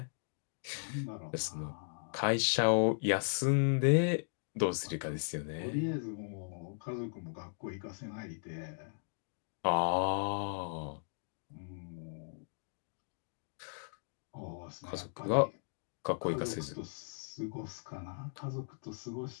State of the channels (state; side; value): silent; right; digital silence